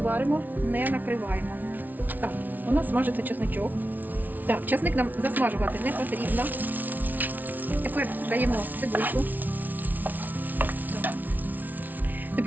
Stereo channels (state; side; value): late; left; 0.081 ms